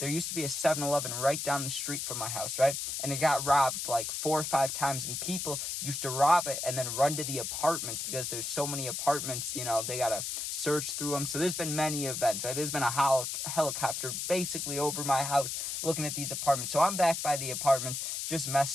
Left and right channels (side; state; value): left; noise; hiss, 3 dB below the sound